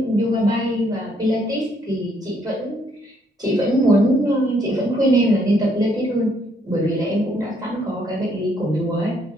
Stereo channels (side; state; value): both; normal; correlation 0.69